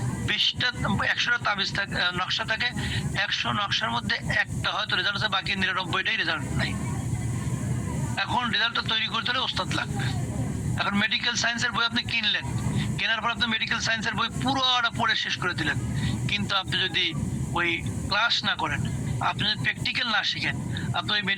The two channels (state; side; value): identical; both; correlation 1.00